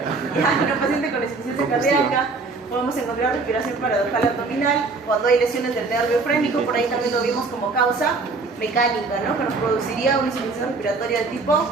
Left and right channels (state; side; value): quieter; left; 4.0 dB